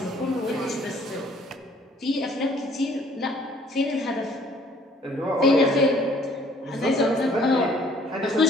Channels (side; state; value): both; normal; correlation 0.59